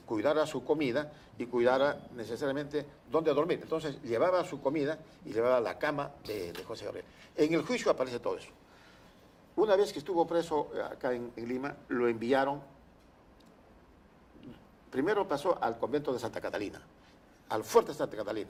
su comida y cuidara necesariamente dónde dormir. Entonces llevaba su comida y llevaba la cama de José Gabriel. En el juicio aparece todo eso. Una vez que estuvo preso acá en Lima, lo enviaron, primero pasó al convento de Santa Catalina, al fuerte de Santa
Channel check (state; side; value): identical; both; correlation 1.00